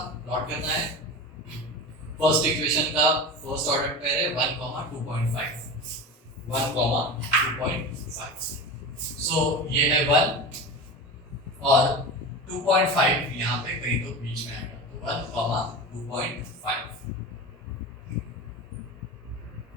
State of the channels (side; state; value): both; normal; correlation 0.28